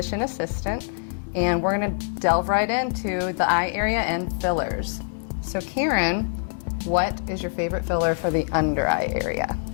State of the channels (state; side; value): silent; right; digital silence